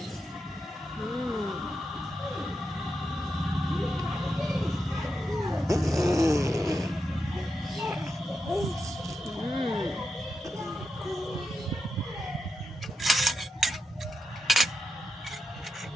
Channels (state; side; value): normal; both; correlation 0.87